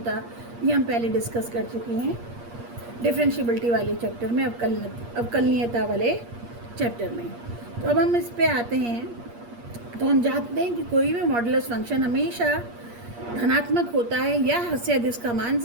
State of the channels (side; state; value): left; late; 8.5 ms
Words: ये हम पहले डिस्कस कर चुके हैं डिफरेंशिएबिलिटी वाले चैप्टर में, अवकलनीयता वाले चैप्टर में। तो अब हम इस पे आते हैं। तो हम जानते हैं कि कोई भी मॉडुलस फंक्शन हमेशा धनात्मक होता है या हद से अधिक इसका मान